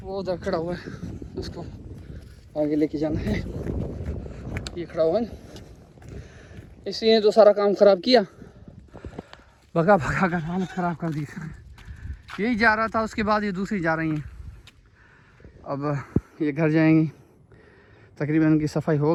वो उधर खड़ा हुआ है, उसको आगे लेके जाना है। ये खड़ा हुआ है, इसलिए तो सारा काम ख़राब किया, भगा भगा कर हालत ख़राब कर दी। यही जा रहा था, उसके बाद ये दूसरी जा रही हैं। अब ये घर जाएंगी, तकरीबन उनकी सफाई हो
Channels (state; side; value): identical; both; correlation 1.00